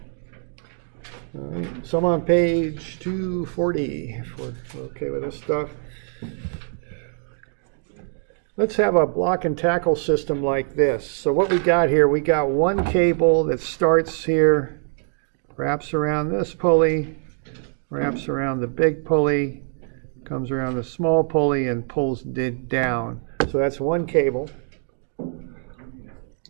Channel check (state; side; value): silent; left; 57 dB below the other